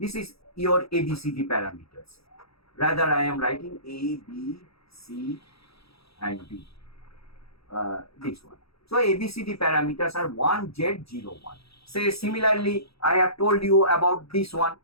is your ABCD parameters. Rather, I am writing A, B, C and D. This one. So ABCD parameters are 1Z01. Say similarly, I have told you about this one.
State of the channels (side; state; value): right; late; 0.77 ms